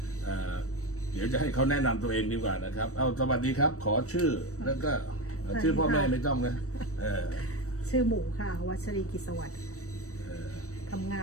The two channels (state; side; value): late; right; 0.65 ms